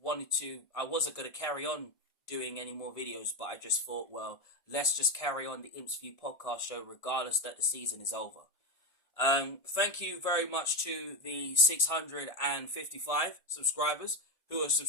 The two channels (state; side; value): late; right; 1.7 ms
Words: wasn't going to carry on doing any more videos, but I just thought, well, let's just carry on the Imps View podcast show regardless that the season is over. Thank you very much to the 655 subscribers who are